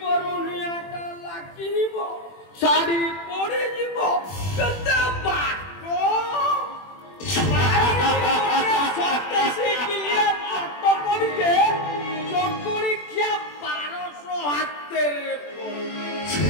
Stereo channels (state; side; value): late; right; 21 ms